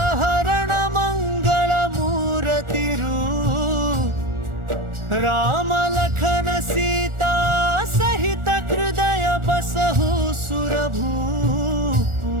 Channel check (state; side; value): late; left; 1.4 ms